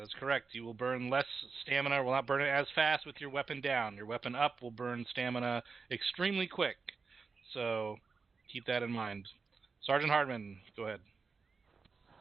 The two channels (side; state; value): left; quieter; 4.8 dB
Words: is correct. You will burn less stamina, will not burn it as fast with your weapon down. Your weapon up will burn stamina extremely quick. So keep that in mind. Sergeant Hardman, go ahead.